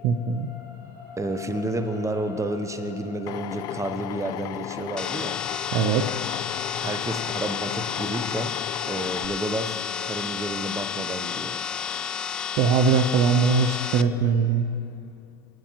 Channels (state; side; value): normal; both; correlation 0.36